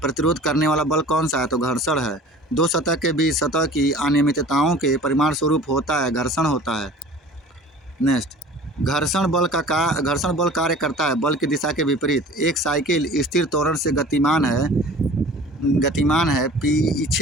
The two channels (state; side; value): normal; both; correlation 0.44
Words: करने वाला बल कौन सा है, तो घर्षण है। दो सतह के बीच सतह की अनियमितताओं के परिमाण स्वरूप होता है, घर्षण होता है। नेक्स्ट, घर्षण बल कार्य करता है बल की दिशा के विपरीत। एक साइकिल स्थिर त्वरण से गतिमान है,